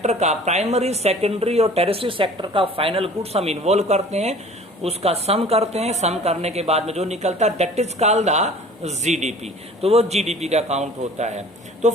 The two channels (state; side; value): normal; both; correlation 0.47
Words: का, प्राइमरी, सेकेंडरी और टेरेस्ट्री सेक्टर का फाइनल गुड्स हम इन्वॉल्व करते हैं, उसका सम करते हैं। सम करने के बाद में जो निकलता है that is called the GDP, तो वो जीडीपी का काउंट होता है। तो